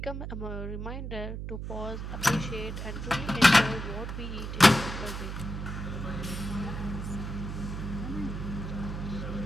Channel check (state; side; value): noise; right; hum, 5 dB below the sound